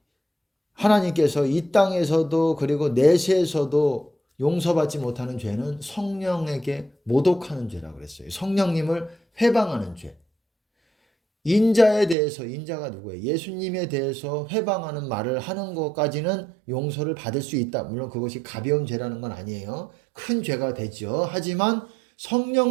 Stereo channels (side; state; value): left; drops out; at 12.2 s